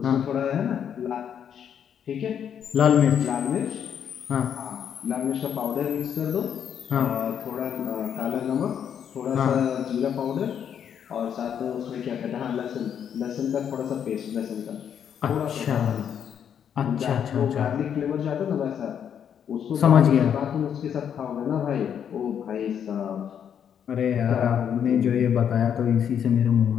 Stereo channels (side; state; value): right; quieter; 8.5 dB